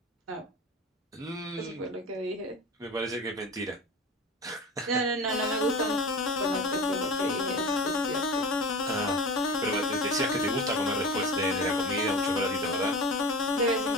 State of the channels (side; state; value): both; normal; correlation 0.31